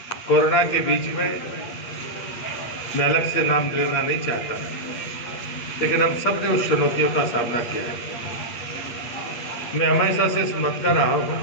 कोरोना के बीच में मैं अलग से नाम लेना नहीं चाहता, लेकिन हम सब ने उस चुनौतियों का सामना किया है। मैं हमेशा से समझता रहा हूँ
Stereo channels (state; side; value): late; right; 8.8 ms